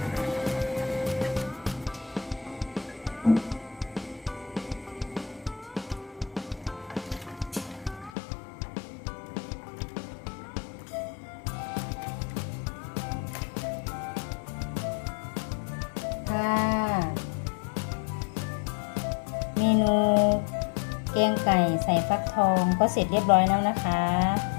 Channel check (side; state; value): right; drops out; at 8.1 s